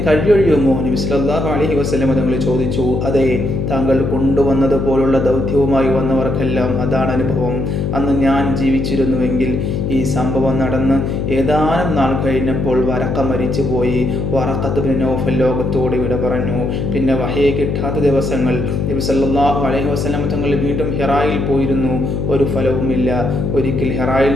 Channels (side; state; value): left; noise; hum, 1 dB below the sound